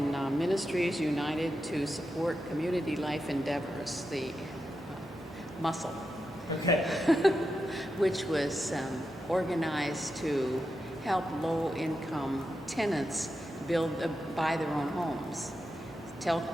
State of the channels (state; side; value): normal; both; correlation 0.88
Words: Ministries United to Support Community Life Endeavors, the MUSCLE, Okay. which was organized to help low-income tenants buy their own homes. Tell